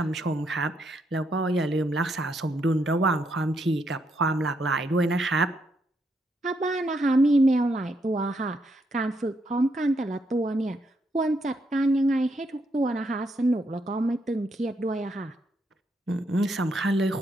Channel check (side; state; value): both; normal; correlation 0.77